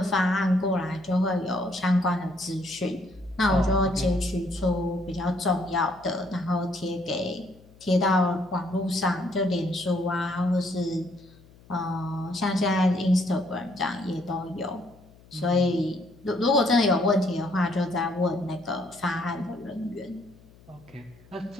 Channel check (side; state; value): left; noise; hum, 25 dB below the sound